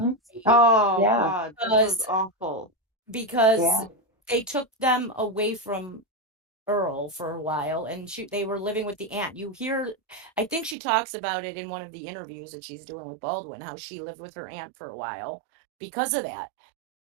Oh, yeah. God, that was awful. Because they took them away from Earl for a while, and they were living with the aunt. I think she talks about it in one of the interviews that she's doing with Baldwin, how she lived with her aunt for a while because of that.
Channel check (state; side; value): drops out; left; at 10.8 s